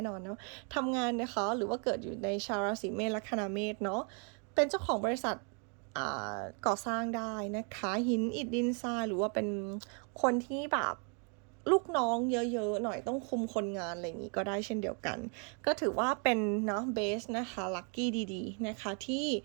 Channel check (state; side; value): quieter; left; 38.5 dB